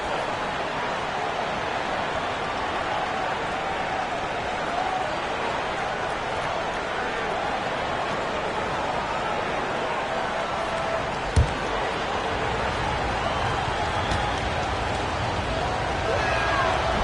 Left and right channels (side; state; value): both; identical; correlation 1.00